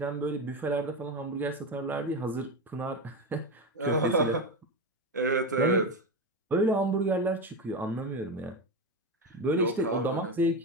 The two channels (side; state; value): both; normal; correlation 0.16